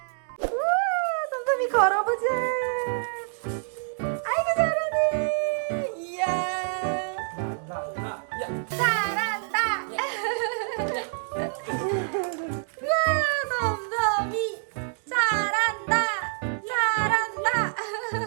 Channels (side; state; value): left; silent; digital silence